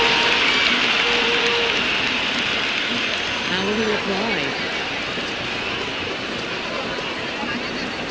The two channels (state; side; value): identical; both; correlation 1.00